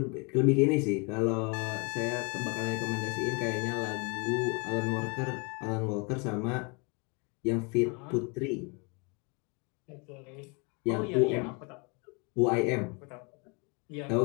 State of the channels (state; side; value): quieter; right; 32.1 dB